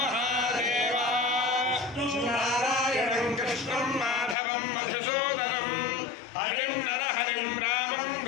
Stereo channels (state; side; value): drops out; right; at 4.4 s